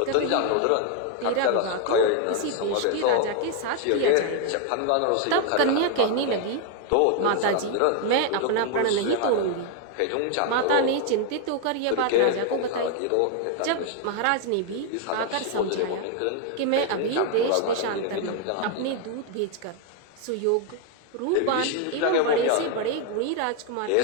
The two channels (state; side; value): different; both; correlation 0.01